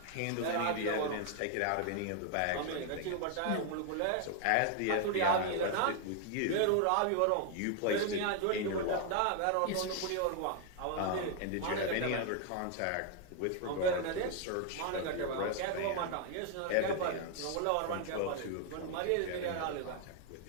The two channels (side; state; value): both; different; correlation 0.00